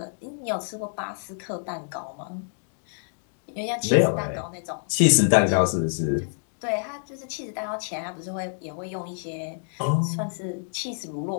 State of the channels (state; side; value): silent; right; digital silence